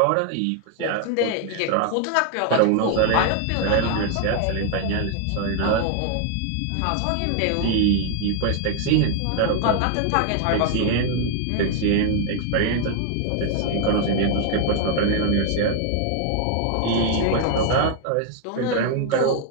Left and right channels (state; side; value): different; both; correlation 0.00